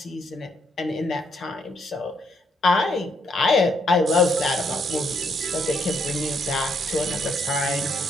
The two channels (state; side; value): normal; both; correlation 0.73